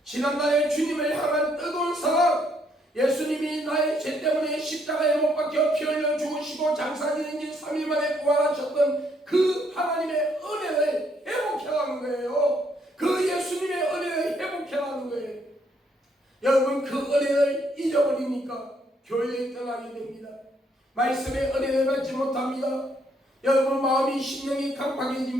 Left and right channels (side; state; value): both; normal; correlation 0.71